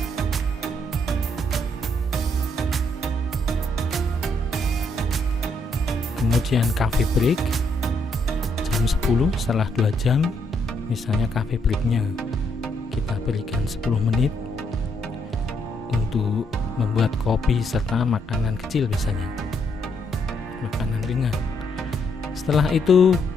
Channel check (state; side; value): normal; both; correlation 0.74